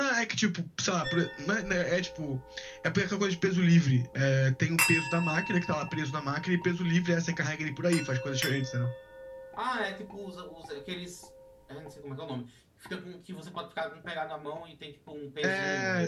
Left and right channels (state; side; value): identical; both; correlation 1.00